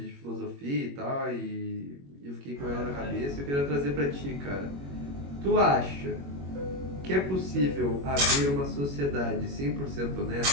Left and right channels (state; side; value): late; left; 21 ms